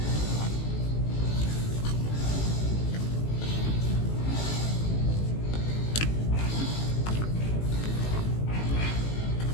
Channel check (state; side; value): late; right; 18 ms